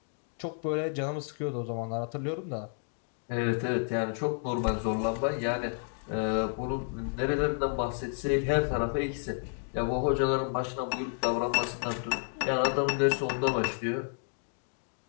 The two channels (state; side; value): silent; right; 57 dB below the other